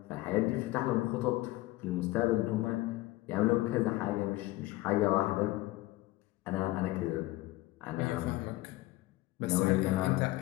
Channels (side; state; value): right; quieter; 18.5 dB